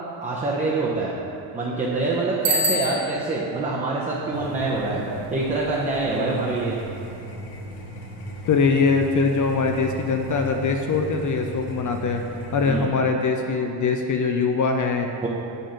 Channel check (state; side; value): normal; both; correlation 0.14